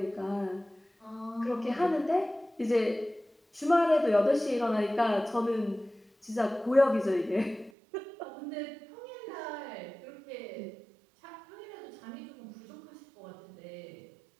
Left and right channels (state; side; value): drops out; left; at 7.7 s